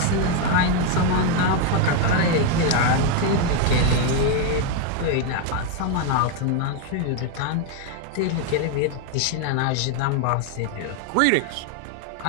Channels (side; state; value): both; different; correlation 0.01